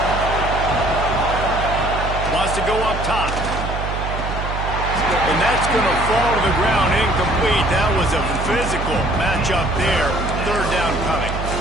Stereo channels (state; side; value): noise; right; hum, 5 dB below the sound